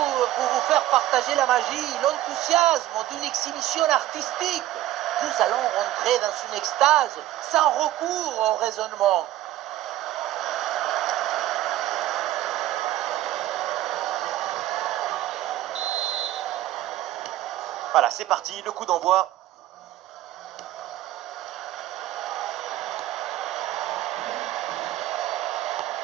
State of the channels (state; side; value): quieter; left; 14.3 dB